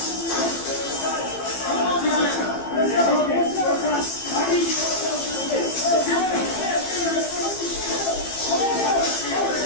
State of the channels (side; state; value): right; late; 15 ms